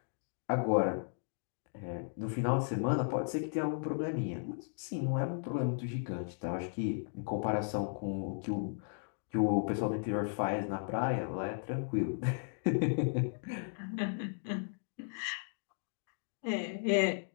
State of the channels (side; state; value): right; silent; digital silence